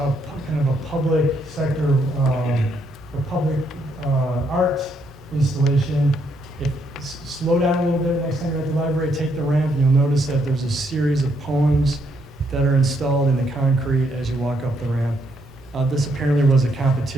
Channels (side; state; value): both; normal; correlation 0.74